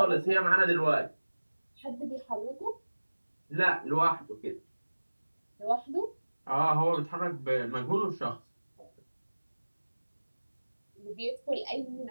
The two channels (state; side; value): inverted; both; correlation -1.00